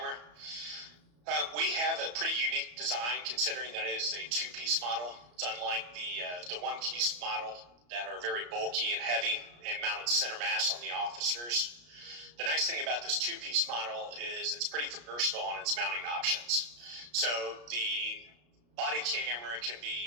We have a pretty unique design considering that it is a two-piece model. It's unlike the one-piece model that are very bulky and heavy and mounted center mass on the officers. The nice thing about this two-piece model is it's pretty versatile on its mounting options. So the body camera can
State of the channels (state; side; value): late; left; 34 ms